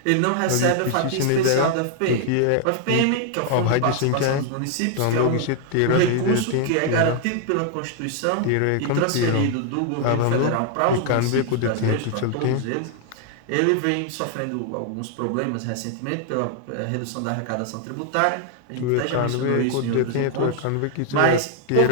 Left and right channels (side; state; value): both; different; correlation 0.00